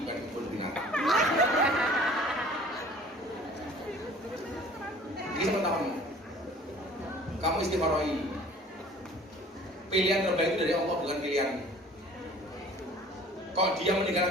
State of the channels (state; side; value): normal; both; correlation 0.49